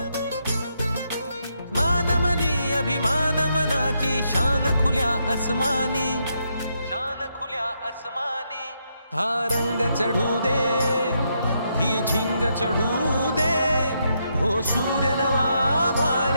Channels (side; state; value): both; inverted; correlation -0.79